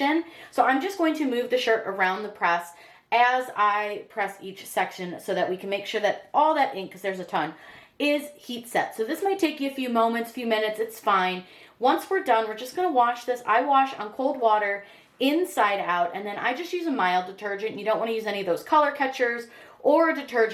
So I'm just going to move the shirt around the press as I press each section so that we can make sure that all that ink, because there's a ton, is heat set. So this might take you a few moments, few minutes, it's fine. Once we're done, we're just gonna wash this. I wash on cold water inside out, and then I just use a mild detergent. You don't wanna use any of those color catchers or a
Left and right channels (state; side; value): identical; both; correlation 1.00